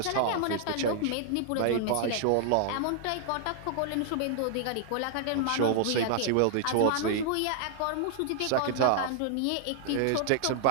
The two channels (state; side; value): different; both; correlation 0.00